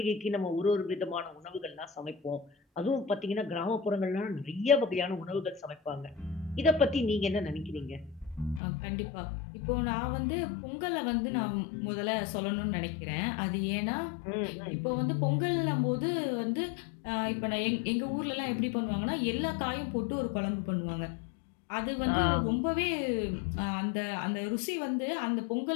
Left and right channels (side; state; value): right; drops out; at 8.6 s